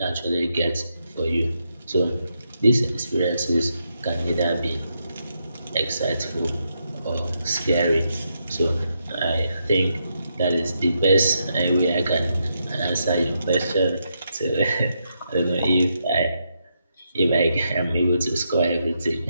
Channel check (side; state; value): both; inverted; correlation -0.81